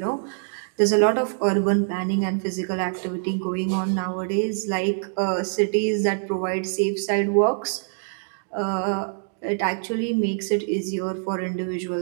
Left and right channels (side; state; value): left; silent; digital silence